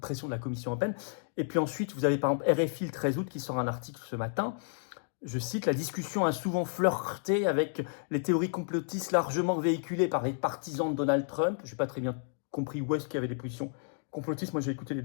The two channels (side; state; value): right; silent; digital silence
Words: pression de la Commission européenne. Et puis ensuite, vous avez par exemple RFI le 13 août qui sort un article ce matin Je cite, la discussion a souvent flirté avec les théories complotistes largement véhiculées par les partisans de Donald Trump. Je n'ai pas très bien compris où est-ce qu'il y avait des positions complotistes. Moi, j'ai écouté les